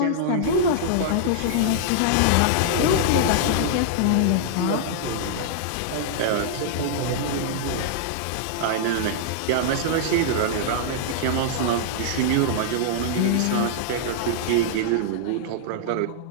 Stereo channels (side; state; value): both; different; correlation -0.01